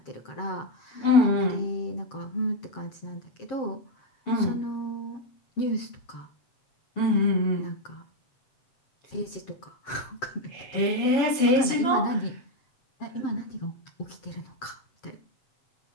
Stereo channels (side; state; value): right; late; 7.6 ms